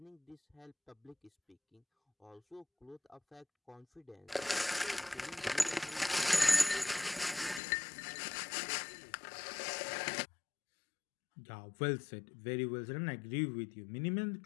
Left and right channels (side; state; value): right; drops out; at 7.6 s